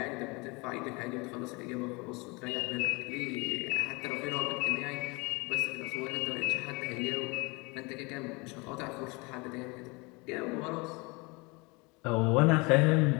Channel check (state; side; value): quieter; right; 27.2 dB